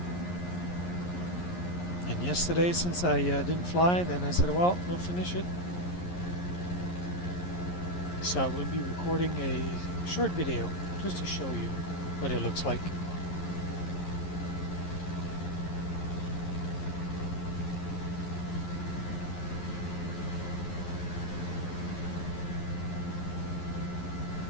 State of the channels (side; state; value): right; late; 11 ms